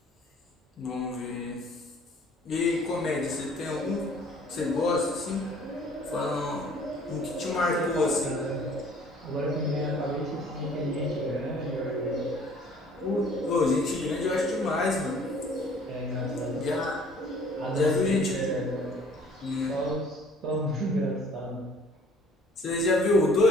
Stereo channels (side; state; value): both; normal; correlation 0.54